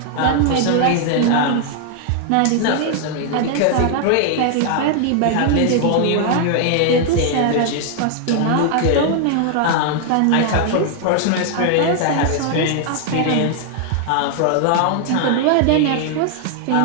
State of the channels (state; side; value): different; both; correlation 0.00